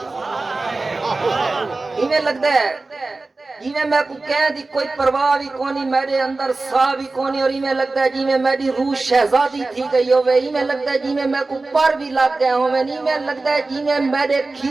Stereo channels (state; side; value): quieter; left; 3.4 dB